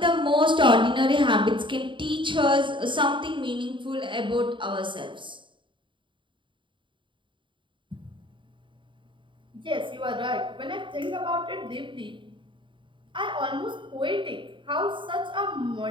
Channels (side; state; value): left; late; 0.24 ms